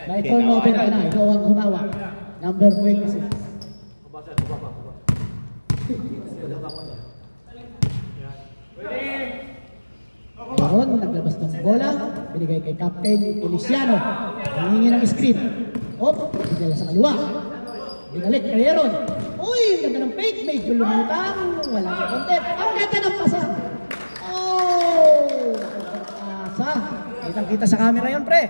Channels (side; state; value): both; inverted; correlation -1.00